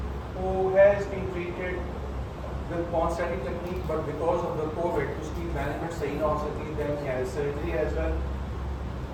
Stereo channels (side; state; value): both; identical; correlation 1.00